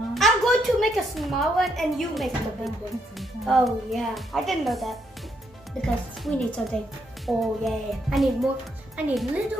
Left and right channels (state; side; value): normal; both; correlation 0.75